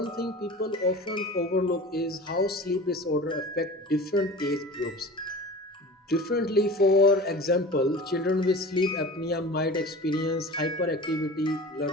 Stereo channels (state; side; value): normal; both; correlation 0.37